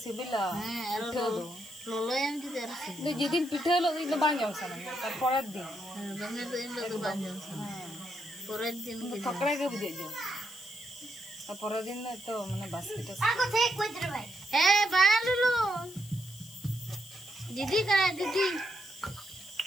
सिबिला हां लोलो एम जी तेरा दे जेदिन पिठे लो इन बांग जम सना तर पड़त दिन दंगे तो इन लोग बांध जम पूरे दिन के पकड़े के बुझे जो और पूरे दिन तो माने बास्केट आगो थे कोई दर भाई ए बांध लो दीदी करा दीदी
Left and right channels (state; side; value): noise; left; hiss, 18 dB below the sound